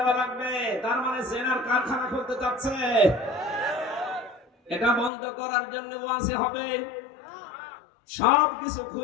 লাগবে। তার মানে জেনার কারখানা খুলতে যাচ্ছে। এটা বন্ধ করার জন্য ওয়াজে হবে। সবকিছু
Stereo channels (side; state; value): right; drops out; at 5.1 s